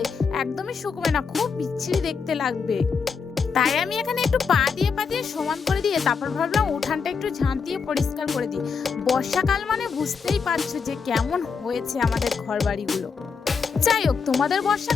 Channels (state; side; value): quieter; right; 5.6 dB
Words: একদমই শুকবে না, খুব বিচ্ছিরি দেখতে লাগবে। তাই আমি এখানে একটু পা দিয়ে সমান করে দিয়ে তারপর ভাবলাম উঠানটা একটু ঝাঁট দিয়ে পরিষ্কার করে দিই। বর্ষাকাল মানে বুঝতেই পারছো যে কেমন হয়েছে আমাদের ঘর বাড়িগুলো। যাই হোক, তোমাদের